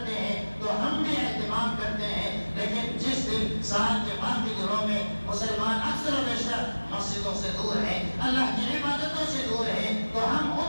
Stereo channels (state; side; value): inverted; both; correlation -1.00